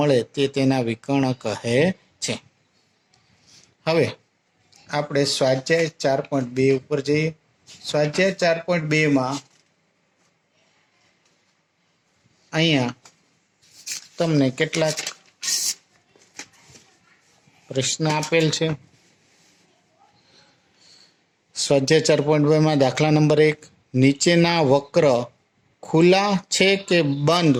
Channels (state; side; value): identical; both; correlation 1.00